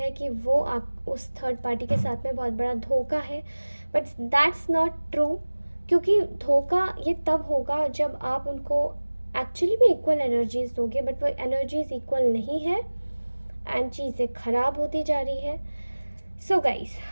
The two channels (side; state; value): both; inverted; correlation -1.00